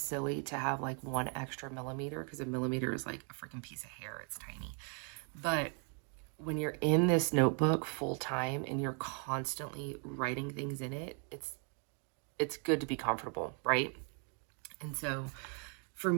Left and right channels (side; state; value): left; quieter; 39.9 dB